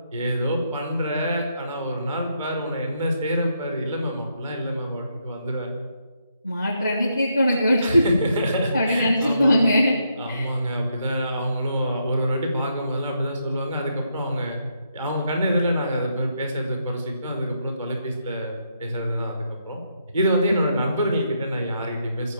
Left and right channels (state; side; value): inverted; both; correlation -0.78